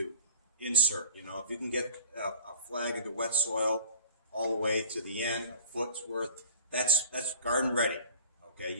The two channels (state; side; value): inverted; both; correlation -0.47